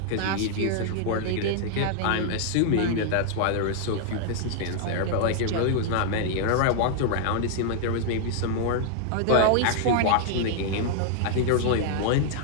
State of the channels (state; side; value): different; both; correlation 0.00